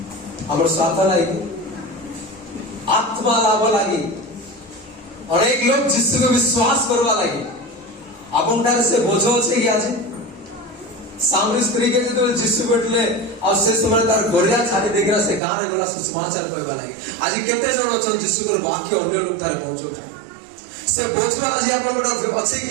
हमर स्वार्थ लागि आत्मा लाभ लागि अनेक लोग जिसको विश्वास करवा लागि आपन से बोझ अछि कि आज सामरी स्त्री के जो जीशु बैठले और से समय तार गोरिया छाड़ी देखिरा से गान गला सुसमाचार कहबा लागि आज केते जण अछन जीशु कर वाक्य अन्य लोग थारे पहुंचो से बोझवा आज आपण गोटा अछि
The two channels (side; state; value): left; drops out; at 15.4 s